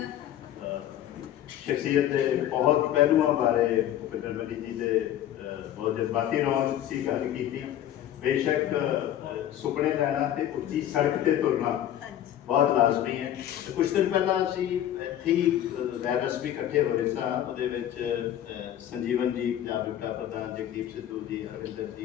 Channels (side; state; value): right; quieter; 11.6 dB